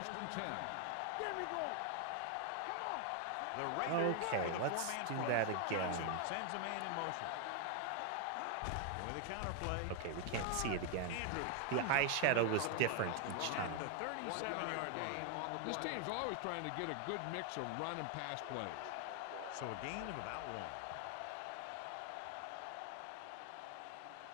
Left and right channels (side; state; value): both; different; correlation 0.00